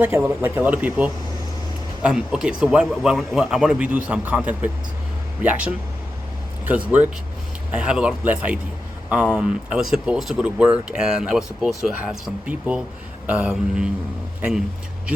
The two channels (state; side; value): normal; both; correlation 0.91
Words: like a lot of people. Okay, so why I want to redo some content with reaction, because work, I have a lot less ID. I was supposed to go to work and I was supposed to have some people and